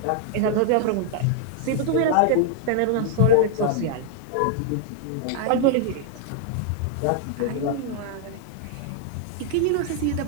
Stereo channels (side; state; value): both; different; correlation 0.00